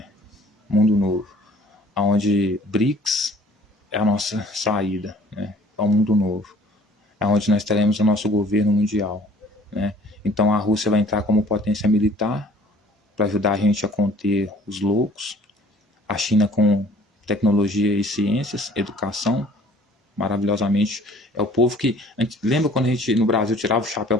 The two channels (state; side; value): normal; both; correlation 0.53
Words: Mundo novo, onde BRICS é a nossa saída, né? É um mundo novo, onde nós teremos o nosso governo mundial, né? Então a Rússia vai entrar como potência militar para ajudar a gente a conter os loucos, a China com tecnologia e ciências, educação, maravilhosamente. É o povo que... lembra quando a gente no Brasil tirava o chapéu